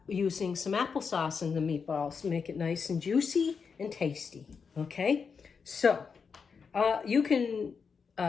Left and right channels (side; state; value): right; quieter; 5.7 dB